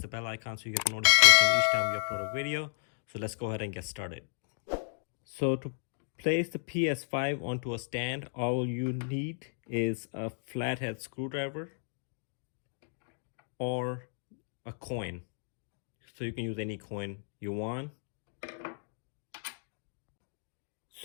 bell icon so you get the notification each time we upload a video. So let's go ahead and get started. So to place the PS5 onto a stand, all you need is a flathead screwdriver or a coin. So you can use any coin you want.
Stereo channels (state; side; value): silent; right; digital silence